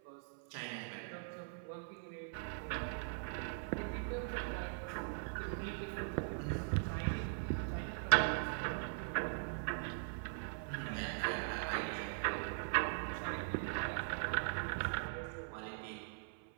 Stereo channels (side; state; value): left; silent; 50 dB below the other